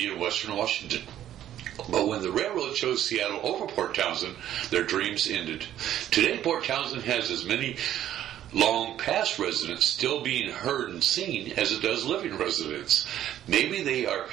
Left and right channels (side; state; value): left; quieter; 11.7 dB